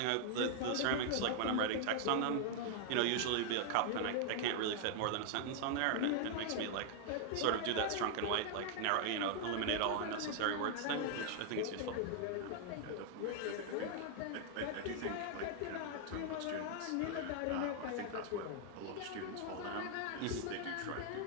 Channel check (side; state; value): both; different; correlation 0.00